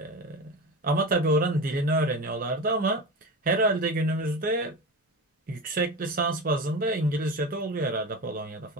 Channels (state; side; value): normal; both; correlation 0.25